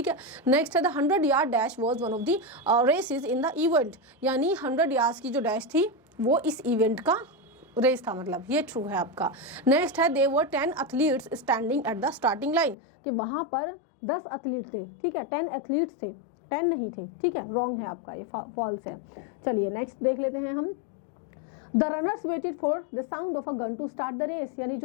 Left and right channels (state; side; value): drops out; right; at 12.8 s